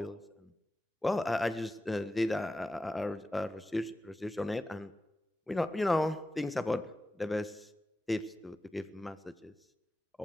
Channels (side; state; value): both; normal; correlation 0.94